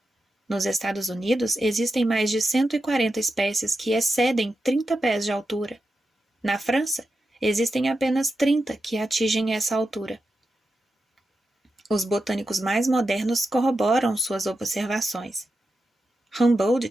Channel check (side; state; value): both; normal; correlation 0.89